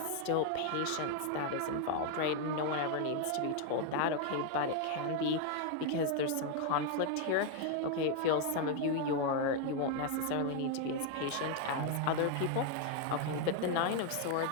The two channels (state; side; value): different; both; correlation 0.00